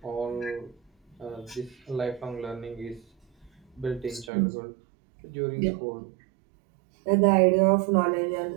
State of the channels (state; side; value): drops out; left; at 4.3 s